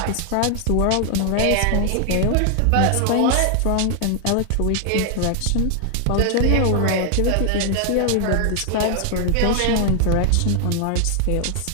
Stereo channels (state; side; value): different; both; correlation 0.00